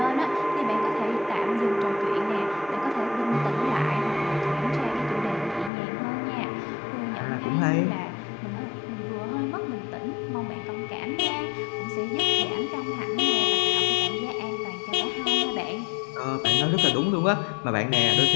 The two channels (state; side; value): drops out; right; at 5.7 s